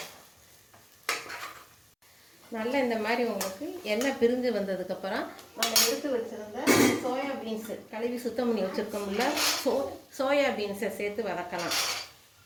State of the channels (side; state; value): both; identical; correlation 1.00